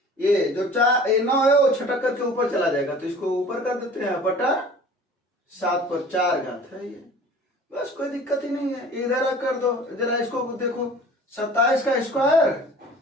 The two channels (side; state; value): both; normal; correlation 0.45